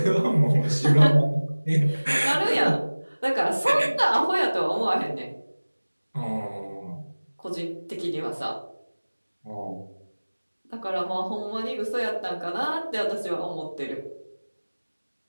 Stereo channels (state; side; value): inverted; both; correlation -1.00